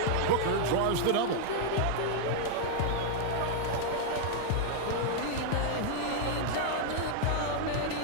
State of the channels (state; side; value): different; both; correlation -0.01